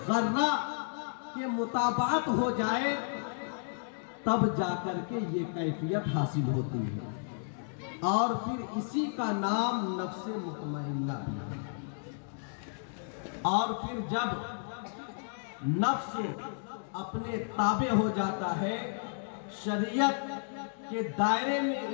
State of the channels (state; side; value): silent; right; digital silence